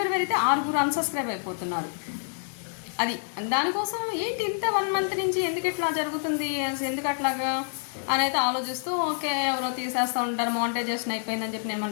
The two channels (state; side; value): silent; right; 60 dB below the other